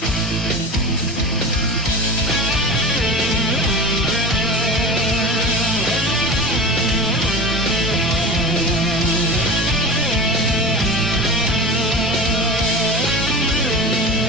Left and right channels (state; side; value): normal; both; correlation 0.30